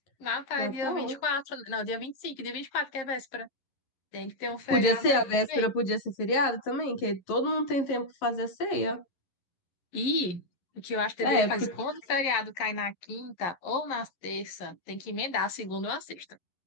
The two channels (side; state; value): right; late; 11 ms